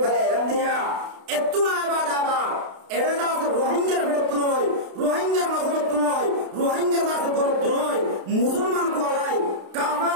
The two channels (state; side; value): late; left; 32 ms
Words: भले एरम दिया एत्तुना इबादाबा एडा से रोहिंग्या बेडतुनोय रोहिंग्या नसलतुनोय रोहिंग्या दास बोलतुनोय मुसलमान को आलाई